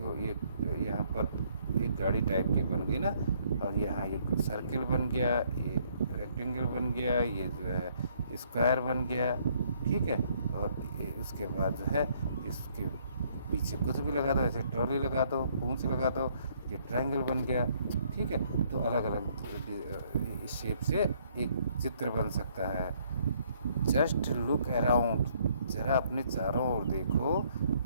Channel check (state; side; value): inverted; both; correlation -0.66